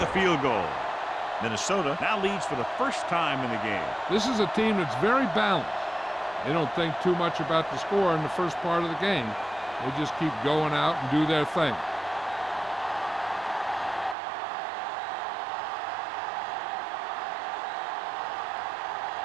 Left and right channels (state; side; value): drops out; left; at 14.2 s